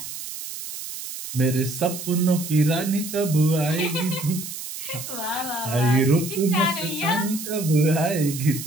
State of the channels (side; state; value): right; noise; hiss, 9 dB below the sound